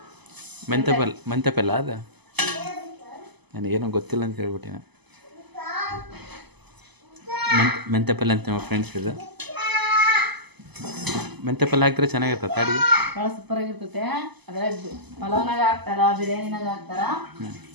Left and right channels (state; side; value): late; left; 0.99 ms